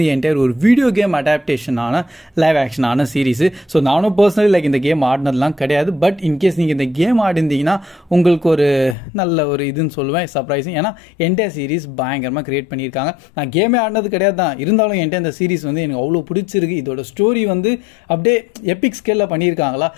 என்டையர் ஒரு வீடியோ கேம் அடாப்டேஷனான லைவ் ஆக்ஷனான சீரிஸ். ஸோ நானும் பர்சனலி இந்த கேம் ஆடினதுலாம் கிடையாது. பட் இன்கேஸ் நீங்கள் இந்த கேம் ஆடிருந்தீங்கன்னா உங்களுக்கு ஒரு நல்ல ஒரு இதுன்னு சொல்லுவேன், சர்ப்ரைசிங். ஏன்னா என்டையர் சீரிஸ் பயங்கரமாக கிரியேட் பண்ணியிருக்காங்க. நான் கேமே ஆடினது கிடையாது தான், இருந்தாலும் என்கிட்ட இந்த சீரிஸ் வந்து எனக்கு அவ்வளோ பிடிச்சிருக்கு. இதோட ஸ்டோரி வந்து அப்படியே எபிக் ஸ்கேலில் பண்ணியிருக்காங்களா.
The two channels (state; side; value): drops out; right; at 9.0 s